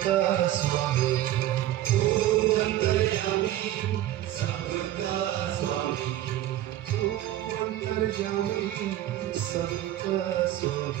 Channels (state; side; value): quieter; left; 13.6 dB